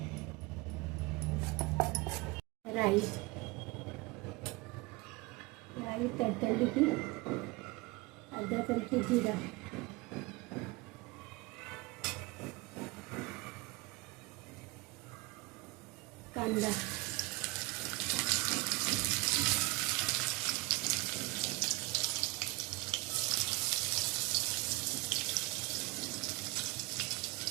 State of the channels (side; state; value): left; quieter; 24.5 dB